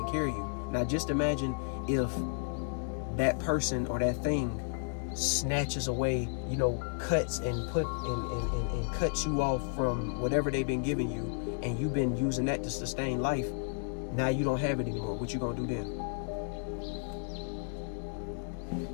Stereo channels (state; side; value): silent; right; digital silence